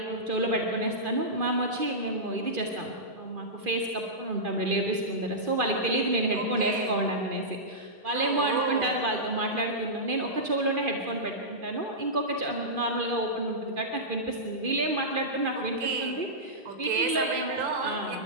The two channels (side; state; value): left; late; 2.5 ms